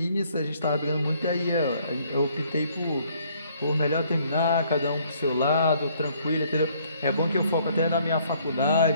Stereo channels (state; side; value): inverted; both; correlation -0.63